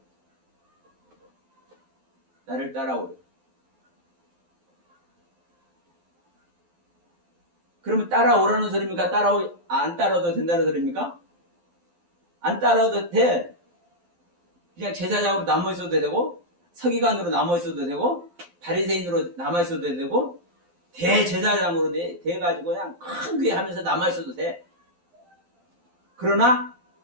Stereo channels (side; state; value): left; late; 12 ms